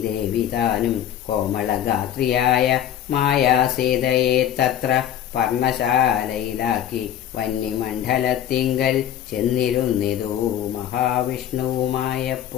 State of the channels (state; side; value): quieter; right; 10.5 dB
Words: ദേവി താനും കോമളഗാത്രിയായ മായാസീതയെ തത്ര പർണശാലയിലാക്കി വന്യമണ്ഡലത്തിങ്കൽ ചെന്നിരുന്നിതു